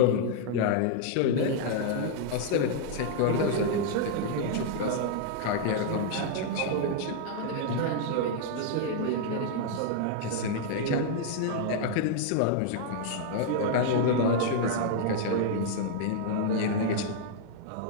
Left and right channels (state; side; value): different; both; correlation -0.01